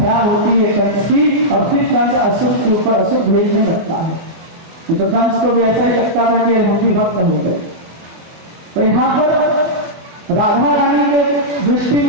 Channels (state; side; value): late; left; 24 ms